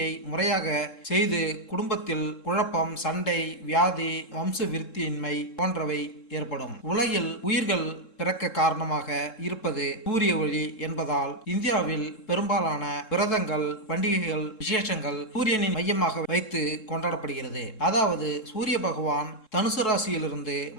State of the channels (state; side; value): late; right; 3.7 ms